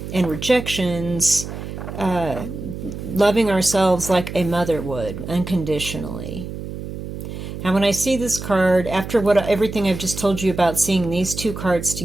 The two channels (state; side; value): noise; right; hum, 9 dB below the sound